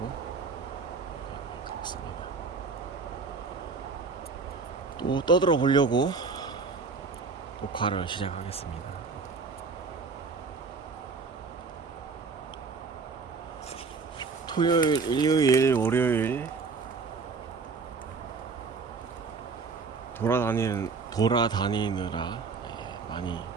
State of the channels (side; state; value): left; quieter; 4.7 dB